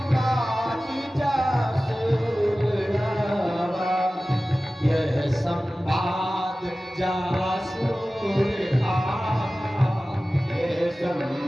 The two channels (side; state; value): both; normal; correlation 0.96